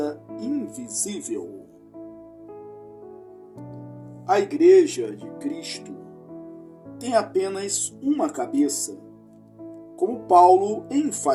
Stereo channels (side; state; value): both; identical; correlation 1.00